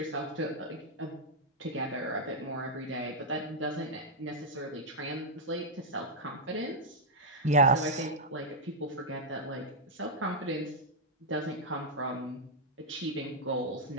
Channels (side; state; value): both; normal; correlation -0.04